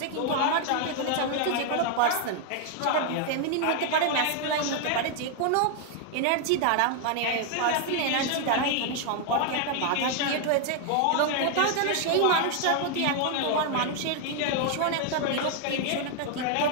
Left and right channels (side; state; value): both; different; correlation 0.00